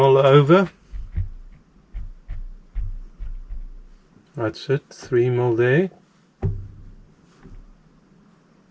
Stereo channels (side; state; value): both; identical; correlation 1.00